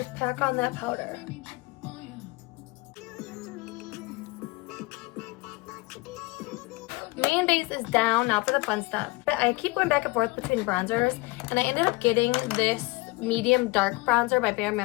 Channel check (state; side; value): quieter; right; 23.9 dB